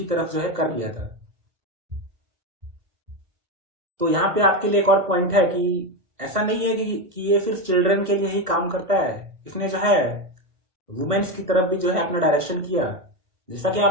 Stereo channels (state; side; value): late; left; 1.5 ms